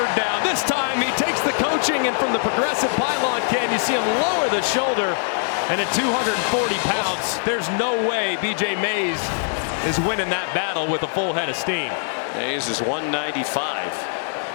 down. This time he takes the coaching, and from the progressive pylon can you see him lower the shoulder, and at 240 pounds, there's no way B.J. Mays is winning that battle with a full head of steam. Mays is 195.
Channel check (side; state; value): right; silent; digital silence